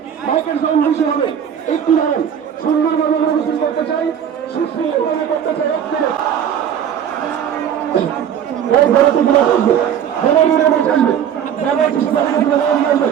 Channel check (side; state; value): left; quieter; 9.0 dB